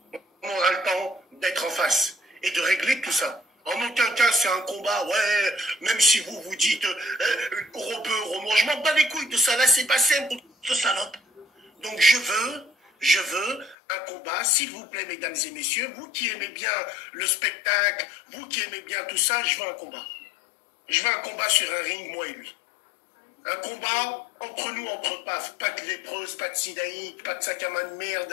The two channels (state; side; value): drops out; right; at 13.8 s